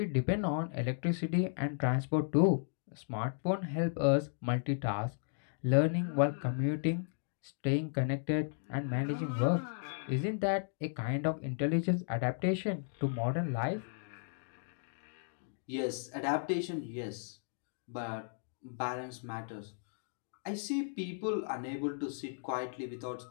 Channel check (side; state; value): right; silent; digital silence